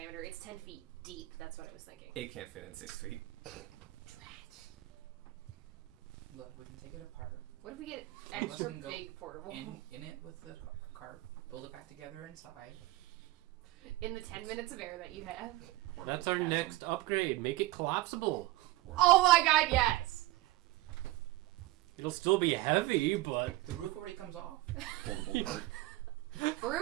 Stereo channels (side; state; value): left; quieter; 17.8 dB